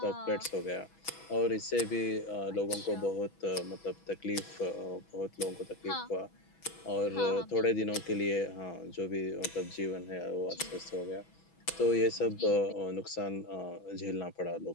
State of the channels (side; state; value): right; late; 6.1 ms